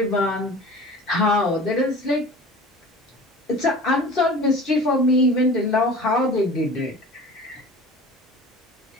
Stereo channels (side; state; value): both; normal; correlation 0.40